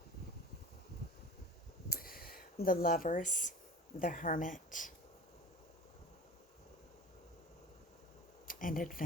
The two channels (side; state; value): both; normal; correlation 0.37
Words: The lovers, the hermit, and